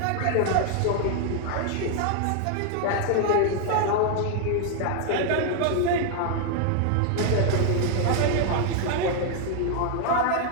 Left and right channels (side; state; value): both; different; correlation 0.00